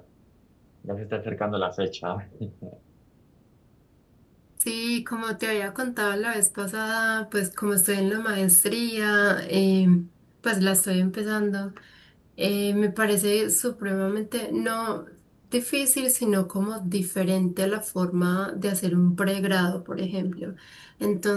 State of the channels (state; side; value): identical; both; correlation 1.00